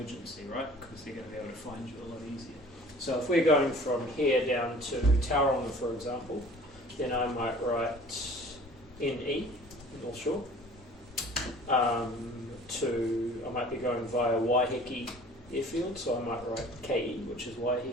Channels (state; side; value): normal; both; correlation 0.48